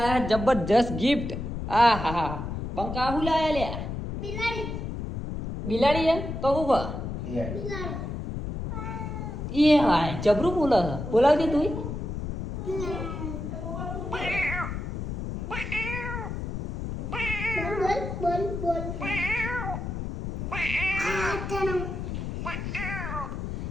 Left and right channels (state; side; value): noise; left; rumble, 5 dB below the sound